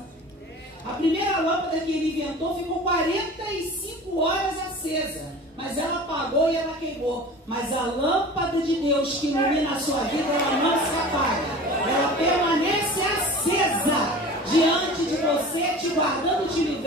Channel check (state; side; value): normal; both; correlation 0.38